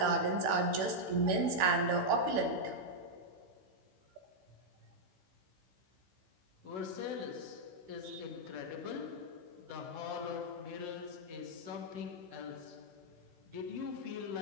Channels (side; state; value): left; late; 16 ms